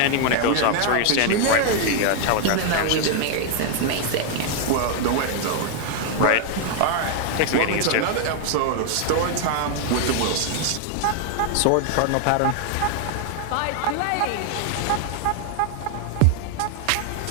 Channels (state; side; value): different; both; correlation 0.00